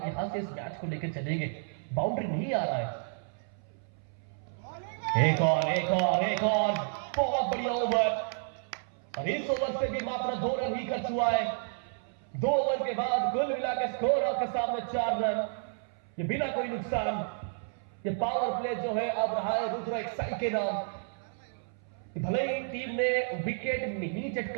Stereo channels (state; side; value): silent; left; 57 dB below the other